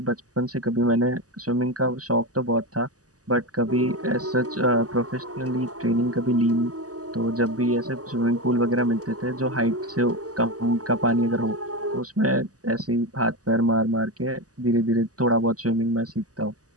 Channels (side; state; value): left; late; 0.67 ms